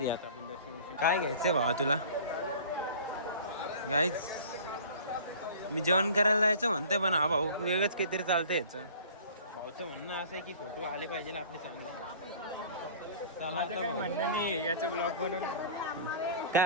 आहे. आता आपण दर्शन काय घ्यायचंय भावा तुला? गाईज मी जेवण करायला जायचं म्हणतोय, पण हा भाऊ वेगळंच काहीतरी चालतंय याचं. भाऊचं म्हणणं असं आहे की फोटो आले पाहिजे आपले चांगले. चला आता काय म्हणणं नाही याचं ब्लॉग बनवून.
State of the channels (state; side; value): inverted; both; correlation -0.44